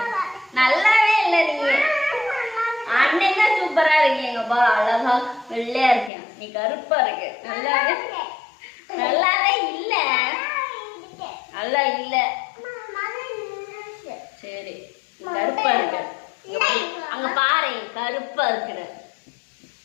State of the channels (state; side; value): drops out; right; at 6.1 s